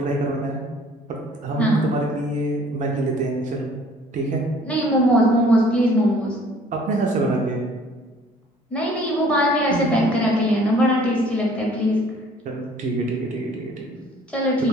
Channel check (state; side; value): normal; both; correlation 0.55